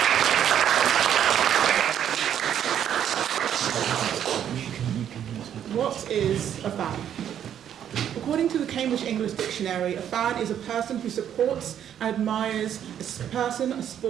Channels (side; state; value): left; quieter; 9.7 dB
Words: What is a fan? According to the Cambridge English Dictionary, a fan is a person who supports and admires a person, a